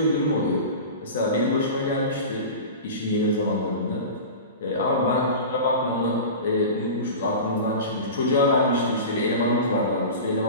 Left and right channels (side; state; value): both; inverted; correlation -0.31